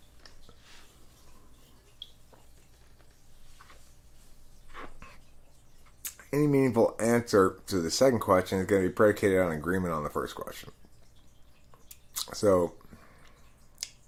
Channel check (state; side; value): identical; both; correlation 1.00